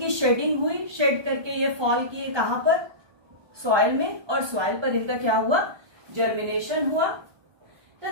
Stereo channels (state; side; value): late; left; 1.2 ms